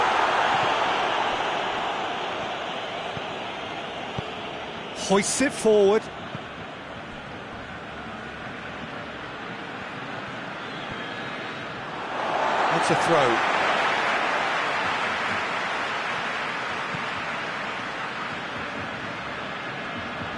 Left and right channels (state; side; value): identical; both; correlation 1.00